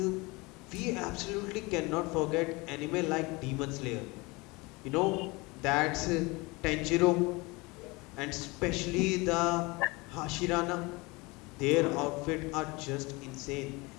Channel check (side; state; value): right; quieter; 24.9 dB